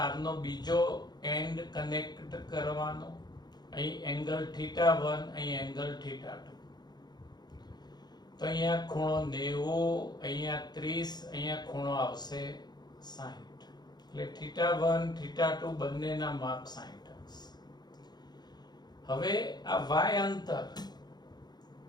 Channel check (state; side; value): late; right; 0.20 ms